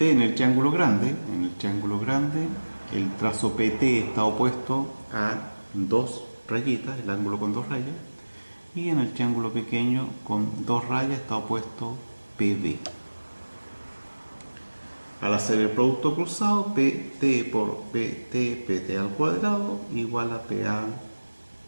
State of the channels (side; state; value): both; inverted; correlation -1.00